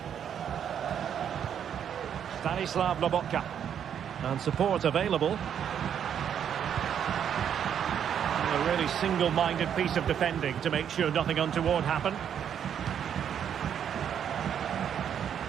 Stanislav Lobotka. And support available. A really single-minded piece of defending to make sure nothing untoward happened.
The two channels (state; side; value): quieter; left; 8.7 dB